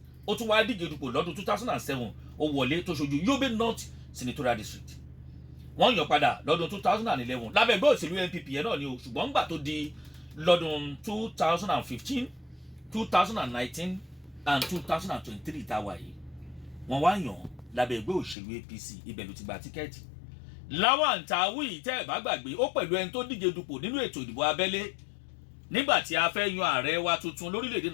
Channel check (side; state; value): right; drops out; at 18.4 s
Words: ó tún wá díje dupò lọ́dún 2007 ó wọlé tó ṣojú Yobe North Senatorial District wọ́n yàn padà lọ́dún 2011 lábẹ́ ẹgbẹ́ òṣèlú NPP yẹn náà ni o ṣùgbọ́n ńgbà tó di lọ́dún 2015 2019 and 2023 tá a wà yìí wọ́n wá yàn lábẹ́ ẹgbẹ́ òṣèlú APC ibẹ̀ ló ti gba tíkẹ́ẹ̀tì. Lawan Tawi tẹ́ ẹ̀ bá gbàgbé ó pẹ̀lú ẹni tó díje dupò nínú ètò ìdìbò abẹ́lé nígbà tí a fẹ́ yan ààrẹ wa tuntun lórílẹ̀‐èdè